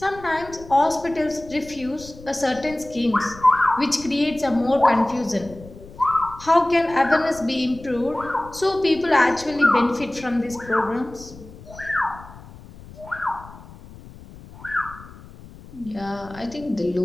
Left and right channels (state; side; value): noise; left; rumble, 18 dB below the sound